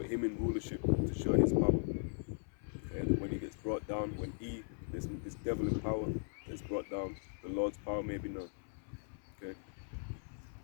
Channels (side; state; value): right; silent; 52 dB below the other